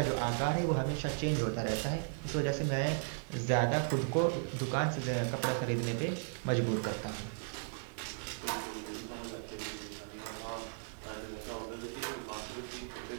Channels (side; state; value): left; silent; 54 dB below the other